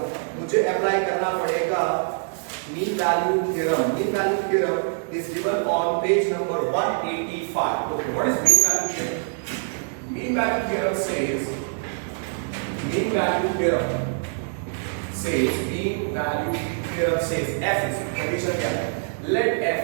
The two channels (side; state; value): left; silent; digital silence